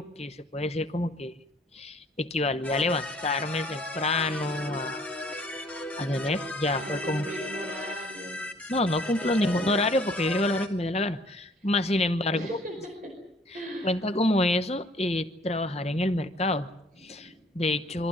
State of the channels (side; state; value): both; normal; correlation 0.57